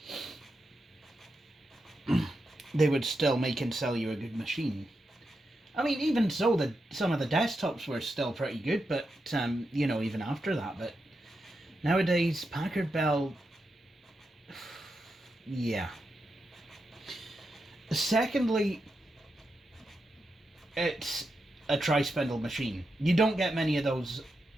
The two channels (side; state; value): both; normal; correlation 0.87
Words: They would still make and sell you a good machine. I mean, even so, some of the desktops were still pretty good, but, you know, even after that. But nowadays, Packard Bell, yeah. Secondly, it's a tri-spindle machine. You don't get many of those